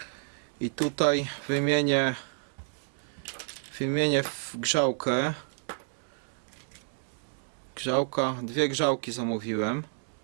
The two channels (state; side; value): silent; left; digital silence